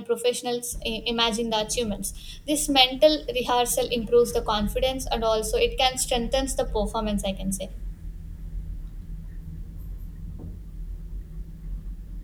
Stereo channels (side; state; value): both; identical; correlation 1.00